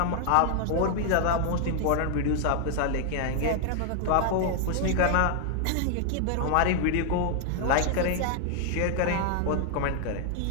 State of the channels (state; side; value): different; both; correlation 0.00